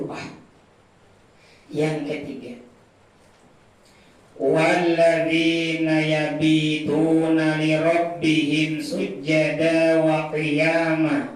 Yang ketiga, walladzina yabituna li rabbihim sujjada wa qiyama.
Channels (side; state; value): both; identical; correlation 1.00